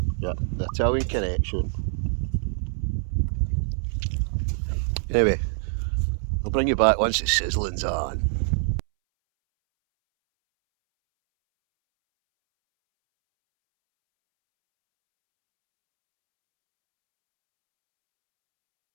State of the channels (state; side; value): silent; left; 62 dB below the other